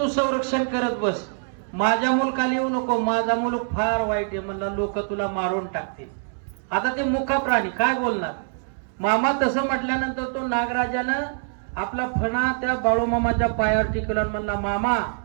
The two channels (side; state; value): left; silent; 62 dB below the other